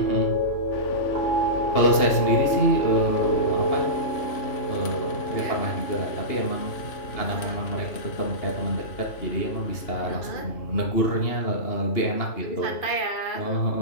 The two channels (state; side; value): late; right; 2.8 ms